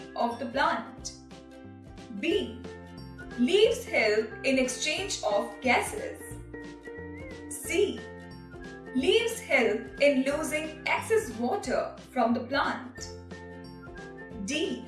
of the plant. B. Leaves help in exchange of gases. C. Leaves help in losing excess water from the plant. D.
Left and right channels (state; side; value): identical; both; correlation 1.00